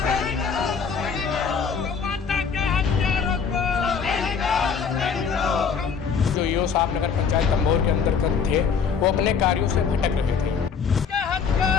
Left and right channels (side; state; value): right; quieter; 6.2 dB